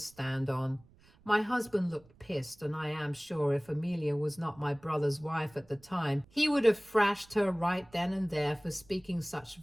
on. My husband looked pissed, and I am sure if Amelia was not my brother's wife at the time, he would have thrashed her right then and there for speaking such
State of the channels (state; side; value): noise; right; rumble, 28 dB below the sound